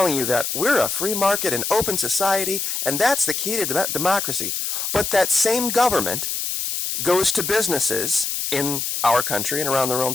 you that we're a free market and open society, and that's the key to democracy. But that same government goes to businesses in our country and around the world and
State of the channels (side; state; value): left; noise; hiss, 2 dB below the sound